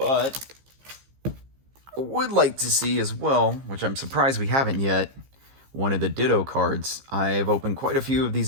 I would like to see as well, which I'm surprised we haven't yet, one of the Ditto cards. I've opened quite a few of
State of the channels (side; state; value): left; late; 15 ms